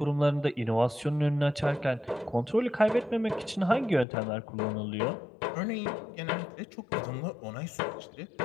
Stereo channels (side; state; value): right; drops out; at 4.0 s